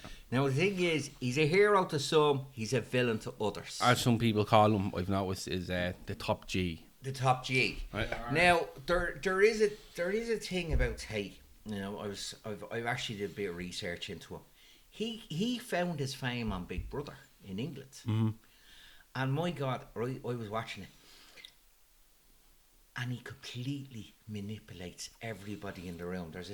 Now the thing is, he's a hero to some. He's a villain to others. As some people call him, I've noticed, is the top G. The top G. Right. Now there is a thing about Tate. You know, I've actually did a bit of research into him. He found his fame on Big Brother in England, and my God, I was watching it, and he completely manipulates everybody in the room. There's a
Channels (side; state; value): both; identical; correlation 1.00